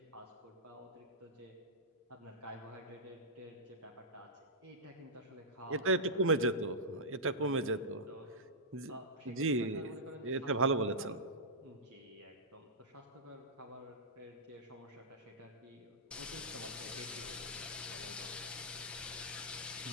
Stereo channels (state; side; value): normal; both; correlation -0.13